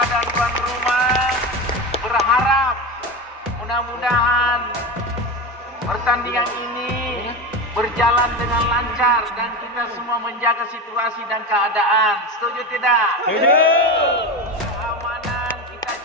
dan tuan rumah berharap mudah-mudahan pertandingan ini berjalan dengan lancar dan kita semua menjaga situasi dan keadaan. Setuju tidak? Setuju. Keamanan kita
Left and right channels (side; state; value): both; normal; correlation 0.22